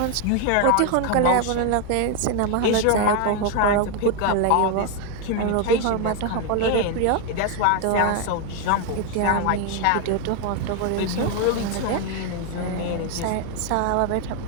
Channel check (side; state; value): both; different; correlation 0.01